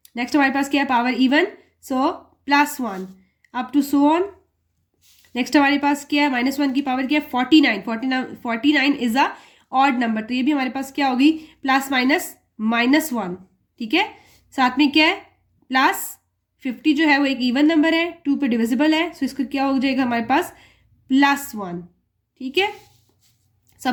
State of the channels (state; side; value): identical; both; correlation 1.00